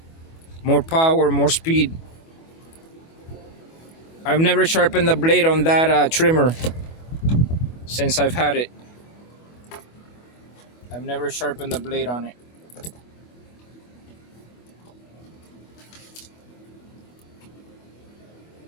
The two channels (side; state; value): right; late; 25 ms